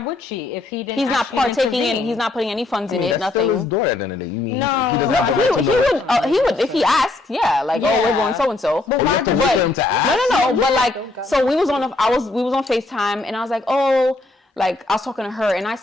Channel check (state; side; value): quieter; right; 3.1 dB